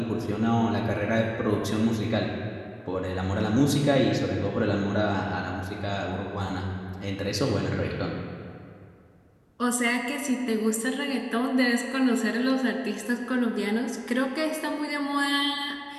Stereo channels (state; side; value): identical; both; correlation 1.00